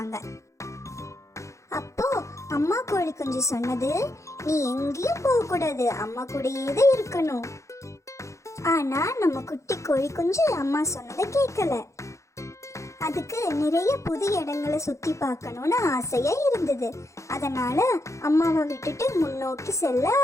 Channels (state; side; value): late; right; 0.15 ms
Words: அப்போ அம்மா கோழி குஞ்சு சொன்னது, நீ எங்கேயும் போக கூடாது, அம்மா கூடயே தான் இருக்கணும். ஆனா நம்ம குட்டி கோழி குஞ்சு அம்மா சொன்னதை கேட்கல. அதுக்கு நிறைய புது இடங்களை சுத்தி பார்க்கணும்னு ஆசையா இருந்தது. அதனால அம்மாவை விட்டுட்டு முன்னோக்கி செல்ல